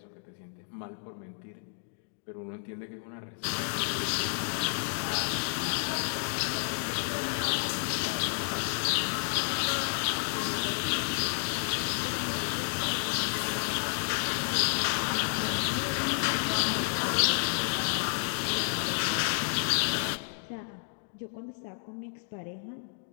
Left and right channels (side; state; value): right; silent; digital silence